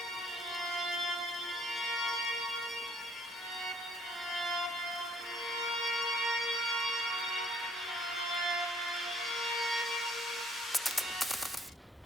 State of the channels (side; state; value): both; normal; correlation 0.61